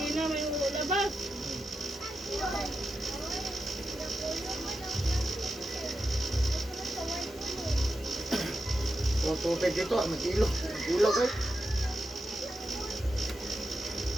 may labas. Kung tubig dito, mag-ilog. Mag-ilog eh.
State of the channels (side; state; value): both; normal; correlation 0.88